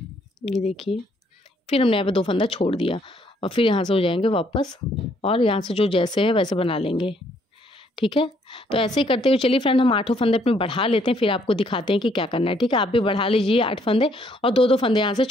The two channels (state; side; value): normal; both; correlation 0.68